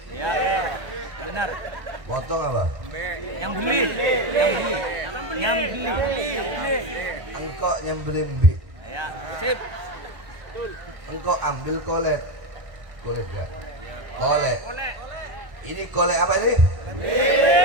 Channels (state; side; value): late; left; 1.4 ms